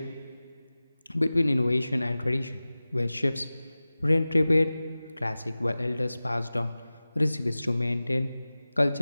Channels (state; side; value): inverted; both; correlation -0.97